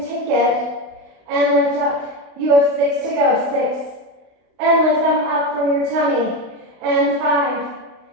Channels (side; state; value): left; late; 32 ms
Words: take it and lift up. You have 6 to go. 6. And lift them up from your tummy. And 5.